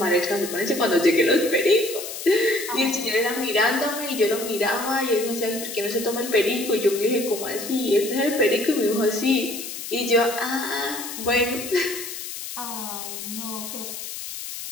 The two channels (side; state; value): left; noise; hiss, 8 dB below the sound